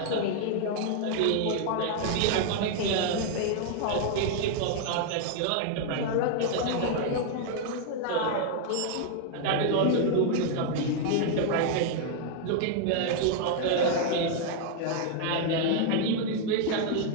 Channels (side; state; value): both; different; correlation 0.00